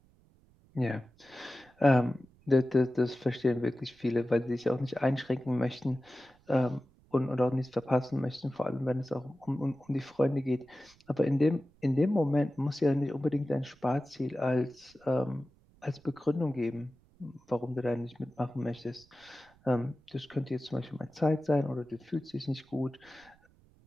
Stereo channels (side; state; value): right; noise; rumble, 30 dB below the sound